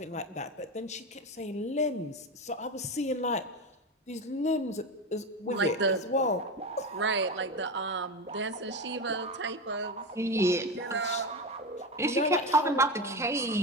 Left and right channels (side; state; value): both; normal; correlation 0.19